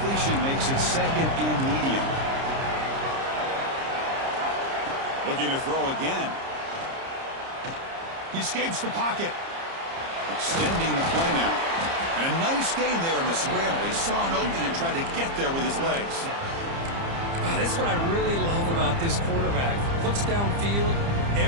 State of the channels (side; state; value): left; late; 30 ms